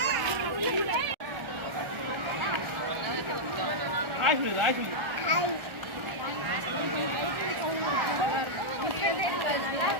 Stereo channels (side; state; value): left; late; 1.4 ms